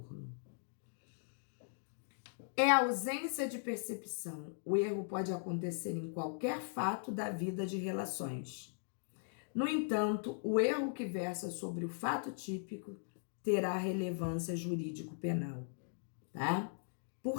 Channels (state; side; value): silent; right; digital silence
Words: É a ausência de percepção. O erro pode acontecer em qualquer fato da vida de relações. No entanto, o erro que versa sobre o fato típico terá relevância jurídico-penal, tá?